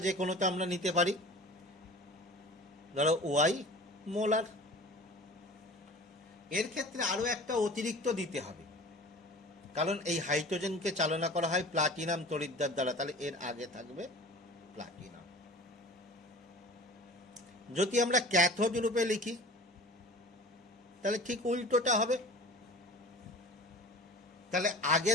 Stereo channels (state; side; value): normal; both; correlation 0.40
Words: যে কোনোটা আমরা নিতে পারি, ধরো Y মোলার। এর ক্ষেত্রে আরো একটা অতিরিক্ত দিতে হবে, কারণ এই হাইড্রোজেনকে চালনা করা হয় প্লাটিনাম তড়িৎদ্বার দ্বারা, তাহলে এর আগে থাকবে প্লাটিনাম। যদি আমরা ক্যাথোড রূপে লিখি, তাহলে ঠিক উল্টোটা হবে। তাহলে আগে